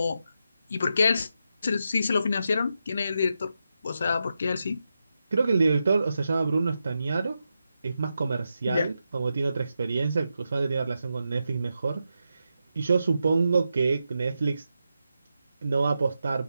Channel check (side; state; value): both; inverted; correlation -0.87